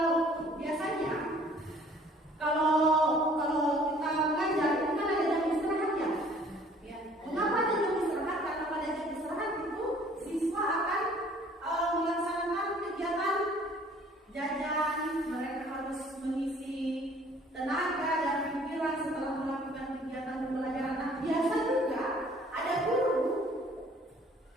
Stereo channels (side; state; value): both; normal; correlation 0.55